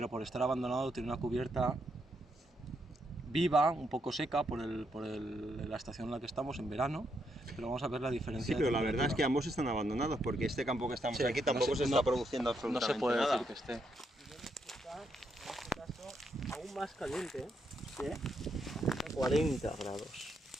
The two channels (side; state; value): both; normal; correlation 0.78